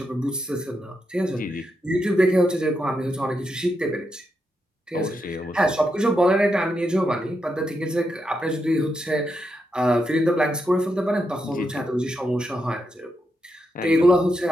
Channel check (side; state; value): both; normal; correlation 0.84